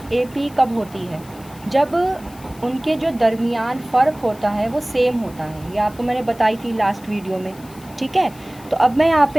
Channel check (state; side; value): noise; left; hiss, 23 dB below the sound